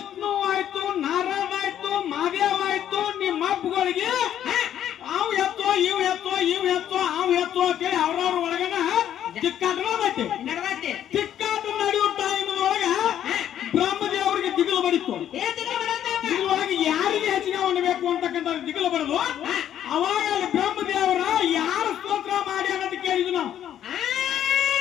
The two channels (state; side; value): quieter; right; 10.6 dB